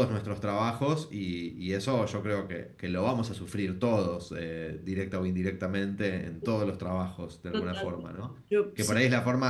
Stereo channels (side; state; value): both; identical; correlation 1.00